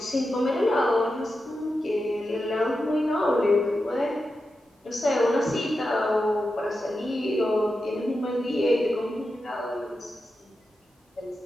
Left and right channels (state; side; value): normal; both; correlation 0.90